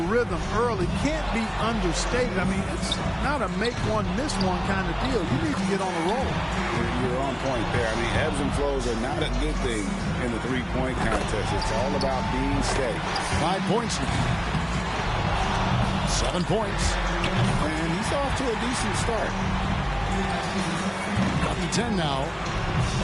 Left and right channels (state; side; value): identical; both; correlation 1.00